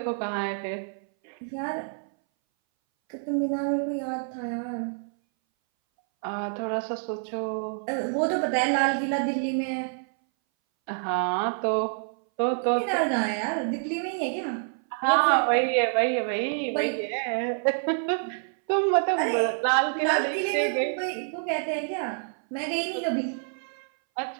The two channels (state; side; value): silent; left; 60 dB below the other